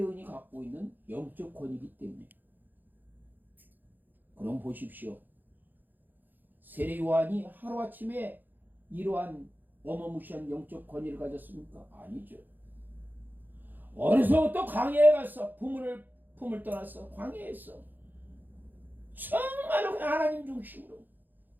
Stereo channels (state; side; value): late; left; 0.087 ms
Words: 갖고 있는 영적 권위이기 때문에. 그럼 보십시오. 세례 요한이 하루아침에 이러한 어마무시한 영적 권위를 가졌습니까? 아니죠. 어려서부터 광야에 가서 품을 떠나서 광야에서 정말로 그냥 하나님 중심으로